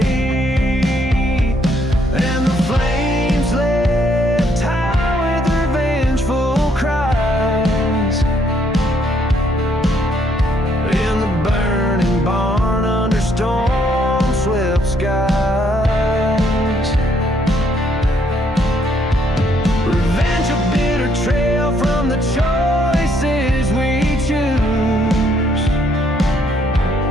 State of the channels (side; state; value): both; normal; correlation 0.70